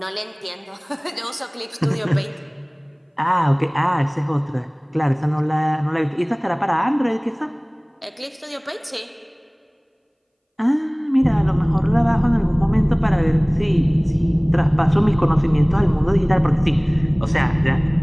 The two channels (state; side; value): identical; both; correlation 1.00